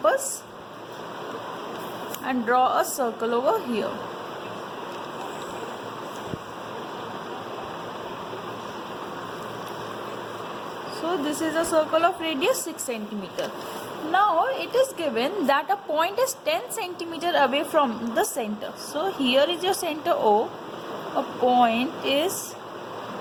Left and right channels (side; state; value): both; identical; correlation 1.00